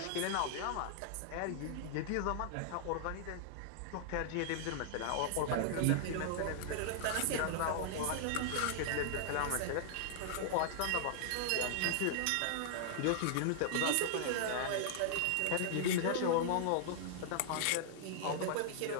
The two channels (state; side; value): different; both; correlation -0.01